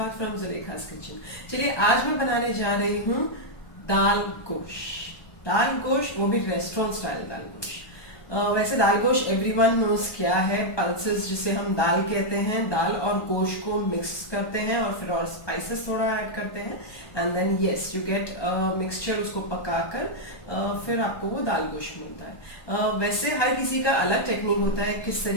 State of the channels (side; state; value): right; late; 1.2 ms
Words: फ्रॉम जुलेखास किचन। चलिए आज मैं बनाने जा रही हूँ दाल गोश। दाल गोश, वो भी रेस्टोरेंट स्टाइल दाल गोश। वैसे दाल गोश एवरीवन नोज क्या है। पल्सेस जिसे हम दाल कहते हैं, दाल और गोश को मिक्स करते हैं और फिर और स्पाइसेस थोड़ा ऐड करते हैं and then yes you get mixture. उसको पकाकर फिर आपको वो दाल गोश मिलता है। वैसे हर किसी का अलग टेक्निक होता है किस